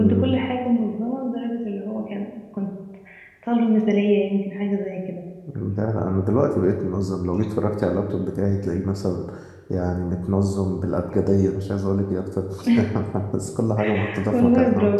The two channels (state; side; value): identical; both; correlation 1.00